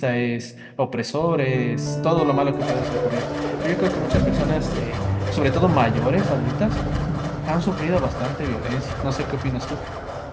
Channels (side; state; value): both; identical; correlation 1.00